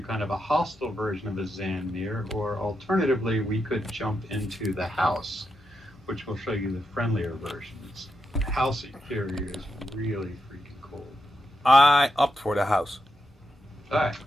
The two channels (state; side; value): normal; both; correlation 0.85